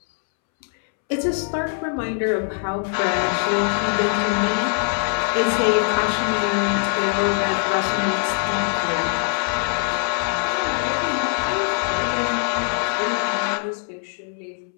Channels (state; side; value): silent; right; 64 dB below the other